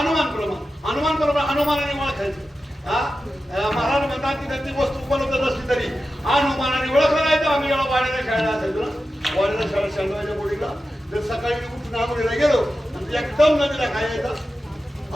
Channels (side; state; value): both; normal; correlation 0.92